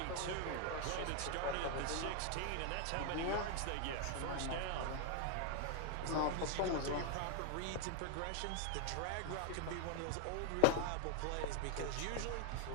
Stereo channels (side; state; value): both; different; correlation 0.00